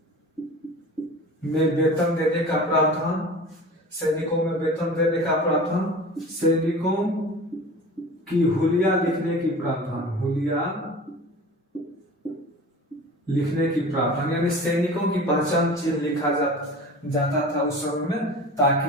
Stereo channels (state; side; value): normal; both; correlation 0.38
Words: में वेतन देने का प्रावधान, सैनिकों की हुलिया लिखने की प्रावधान, यानी सैनिकों की पहचान चिन्ह लिखा जाता था उस समय में,